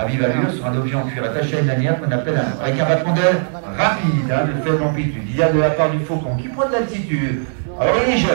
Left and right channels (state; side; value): silent; left; digital silence